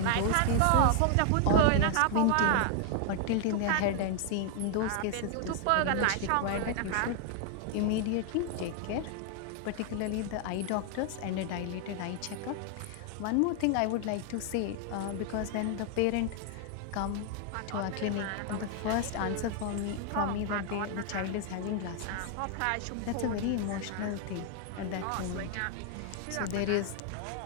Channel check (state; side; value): different; both; correlation 0.00